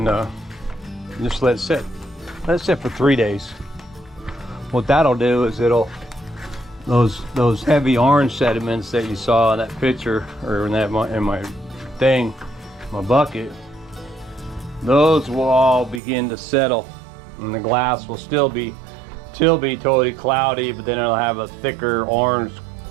just let it sit. Let it sit for 3 days. What that'll do is it'll, those heavy orange sediments that you saw in that picture, or in my thing, my bucket, those will all begin to settle. And the glass will still be totally cloudy, but then it'll have a thicker orange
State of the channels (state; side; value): drops out; left; at 16.0 s